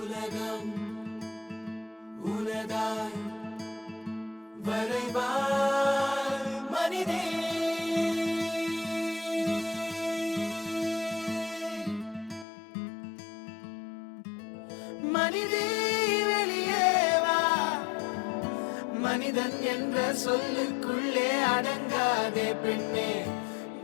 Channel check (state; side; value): drops out; right; at 12.5 s